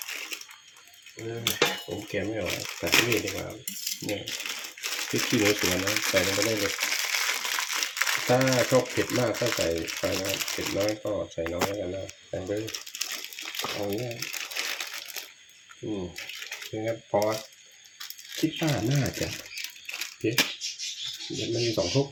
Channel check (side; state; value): both; identical; correlation 1.00